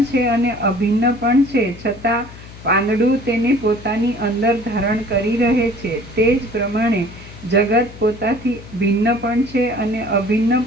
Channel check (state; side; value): noise; left; hum, 17 dB below the sound